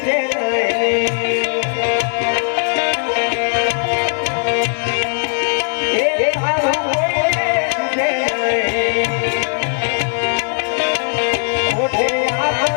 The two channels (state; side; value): silent; right; digital silence